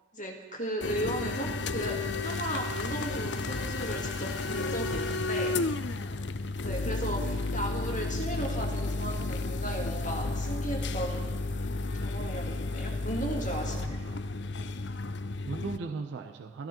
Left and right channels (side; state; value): both; normal; correlation 0.49